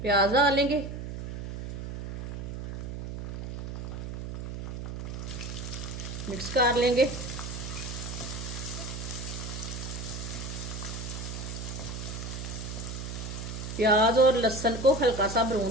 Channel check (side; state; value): right; noise; hum, 6 dB below the sound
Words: प्याज डालेंगे। मिक्स कर लेंगे। प्याज और लहसुन को हल्का सा